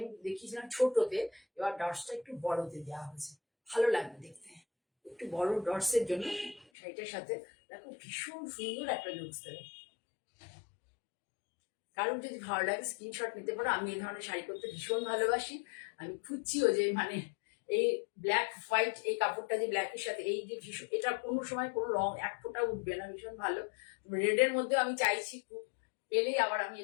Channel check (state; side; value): drops out; right; at 6.7 s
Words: দেখিয়েছিলাম ছোটতে, এবার ডটসটা একটু বড়তে দেওয়া হয়েছে, ভালো লাগবে দেখতে। একটু বড় ডটসের জন্য শাড়িটার সাথে দেখো ভীষণ সুন্দর একটা লুকস দেবে। কারণ যদি ভালো লাগে স্ক্রিনশট নিতে পারো। আমি এই ধরনের শাড়ি করতে ভীষণ ভালোবাসি। আমি খুঁজছিও যে মানে এই ব্ল্যাক হোয়াইট এই কাপড়টা যে ব্ল্যাকের সাথে এই যে ভীষণ, এটা কোনো সময় কোনো রং এক ফোঁটা উঠবে না, ভীষণ ভালো। রেডের মধ্যে আমি চাইছি খুব, পেলেই আবার আমি